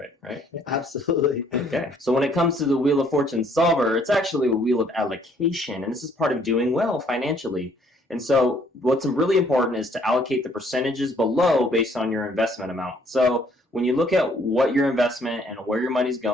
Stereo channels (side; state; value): both; normal; correlation 0.63